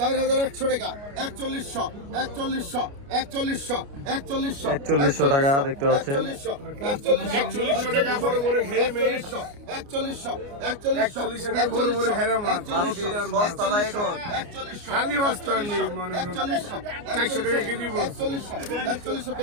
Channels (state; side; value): late; left; 29 ms